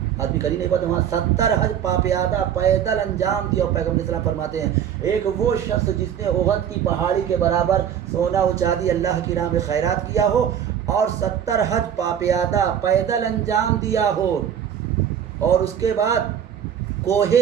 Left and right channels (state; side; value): quieter; left; 9.1 dB